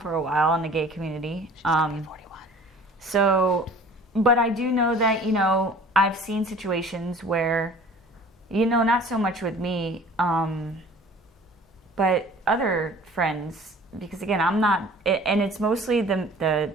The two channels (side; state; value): both; normal; correlation 0.47